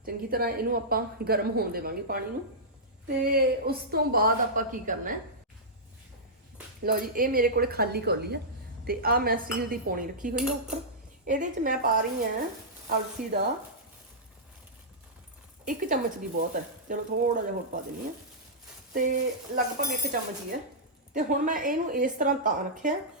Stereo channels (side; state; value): both; normal; correlation -0.13